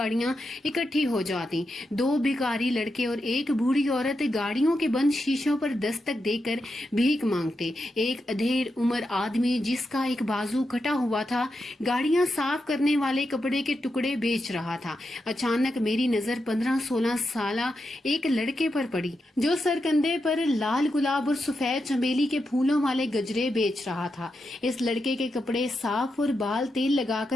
इकट्ठी हो जाती। दो भिखारी लड़के और एक बूढ़ी औरत गाड़ियों के बंद शीशों पर दस्तक देकर भीख मांगते। एक अधेड़ उम्र आदमी जिसका एक बाजू कटा हुआ था गाड़ियां साफ करने वाले कपड़े के टुकड़े बेच रहा था। अचानक मेरी नजर 15-16 साला एक लड़के पर पड़ी जो सरकंधे पर लाल गुलाब और सफेद चमेली के फूलों वाले गजरे बेच रहा था। इस लड़के के कपड़े साफ और बाल तेल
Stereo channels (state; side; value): normal; both; correlation 0.86